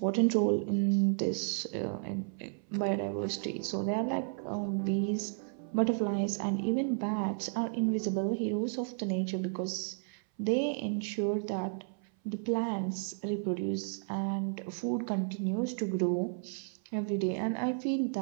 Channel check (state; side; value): silent; left; 56 dB below the other